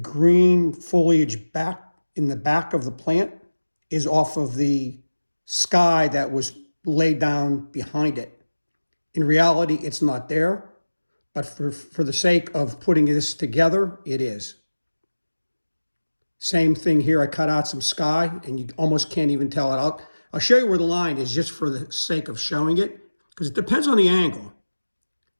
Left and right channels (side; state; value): both; inverted; correlation -1.00